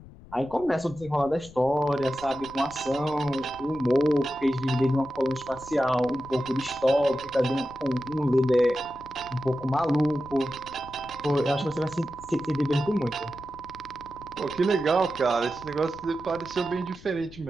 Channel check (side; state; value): left; noise; rumble, 19 dB below the sound